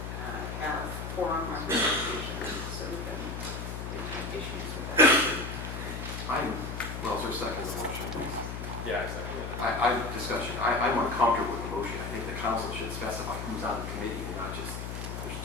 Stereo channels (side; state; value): left; noise; hum, 6 dB below the sound